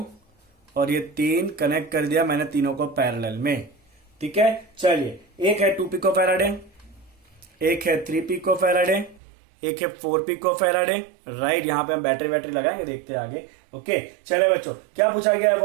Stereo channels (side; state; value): left; drops out; at 9.2 s